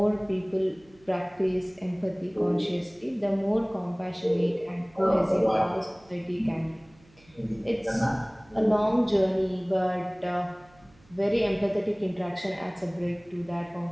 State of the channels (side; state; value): right; noise; hum, 29 dB below the sound